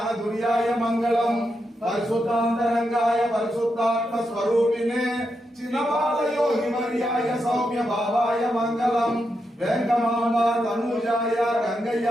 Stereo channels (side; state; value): both; normal; correlation 0.85